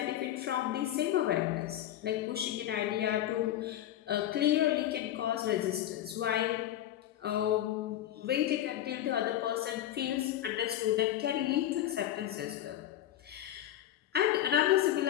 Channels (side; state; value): right; quieter; 12.3 dB